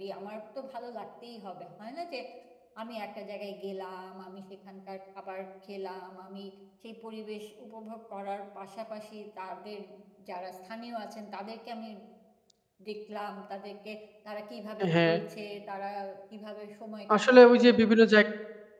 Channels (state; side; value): identical; both; correlation 1.00